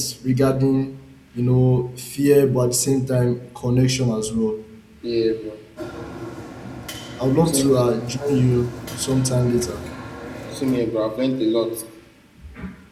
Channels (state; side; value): identical; both; correlation 1.00